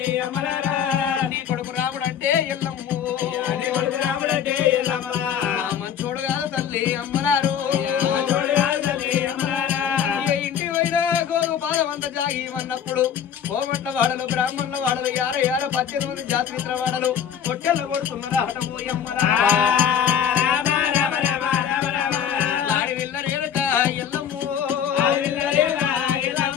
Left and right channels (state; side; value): quieter; right; 8.7 dB